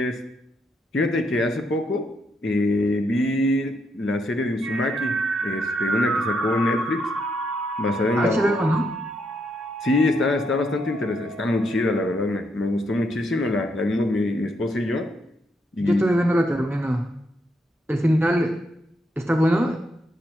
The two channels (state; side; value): normal; both; correlation 0.77